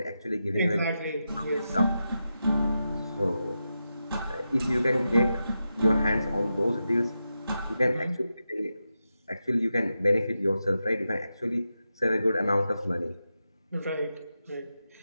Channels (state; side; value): inverted; both; correlation -0.89